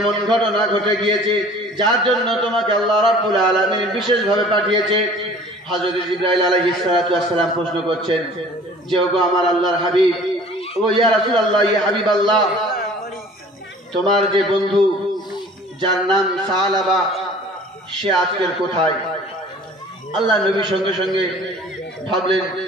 ঘটনা ঘটে গিয়েছে যার জন্য তোমাকে আল্লাহ রাব্বুল আলামিন বিশেষভাবে পাঠিয়েছে? হযরত জিবরাইল আলাইহিস সালাতু ওয়াস সালাম প্রশ্ন করছেন যে ওগো আমার আল্লাহর হাবিব, ও ইয়া রাসূলুল্লাহ, ইয়া হাবিবাল্লাহ, তোমার যে বন্ধু যার নাম সালাবা, সে আজকের কোথায়? আল্লাহ নবী সঙ্গে সঙ্গে ভাবলেন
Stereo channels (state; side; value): normal; both; correlation 0.49